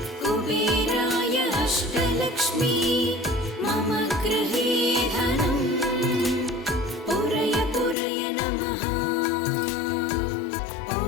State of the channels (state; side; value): drops out; right; at 8.0 s